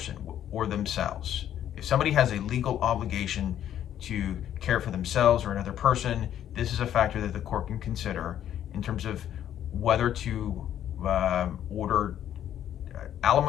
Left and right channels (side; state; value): right; quieter; 10.8 dB